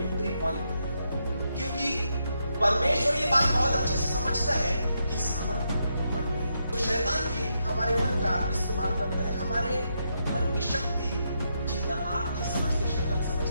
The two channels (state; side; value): inverted; both; correlation -0.81